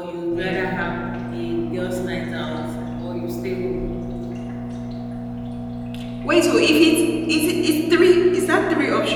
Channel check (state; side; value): identical; both; correlation 1.00